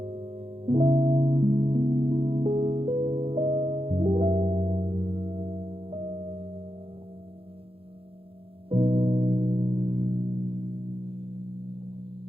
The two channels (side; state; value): left; late; 0.27 ms